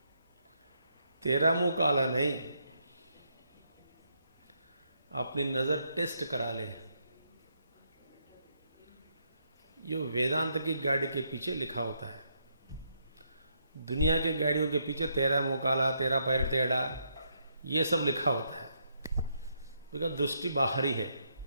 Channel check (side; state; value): both; inverted; correlation -0.76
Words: तेरा मुंह काला नहीं, अपनी नजर टेस्ट करा ले. ये वेदांत की गाड़ी के पीछे लिखा होता है. दुनिया के गाड़ियों के पीछे तेरा मुंह काला, तेरा पैर टेढ़ा, ये सब लिखा होता है. बिकॉज दृष्टि बाहरी है.